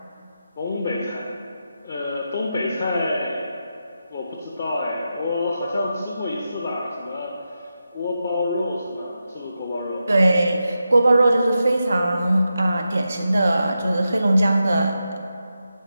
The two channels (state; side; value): inverted; both; correlation -0.89